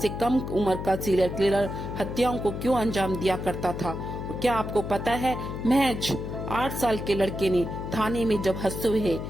कम उम्र का सीरियल किलर हत्याओं को क्यों अंजाम दिया करता था? और क्या आपको पता है महज 8 साल के लड़के ने थाने में जब हंसते हुए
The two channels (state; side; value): noise; left; hum, 6 dB below the sound